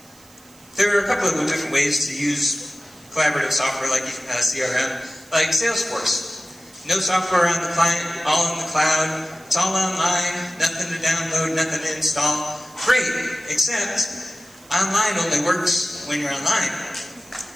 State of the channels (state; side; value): noise; right; hiss, 27 dB below the sound